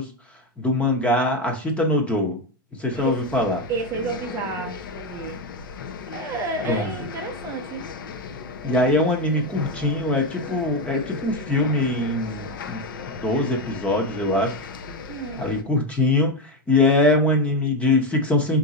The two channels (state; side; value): normal; both; correlation 0.11